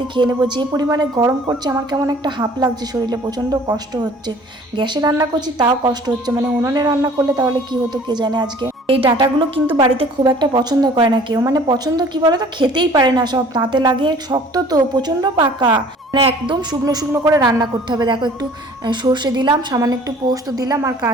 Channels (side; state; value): both; normal; correlation 0.51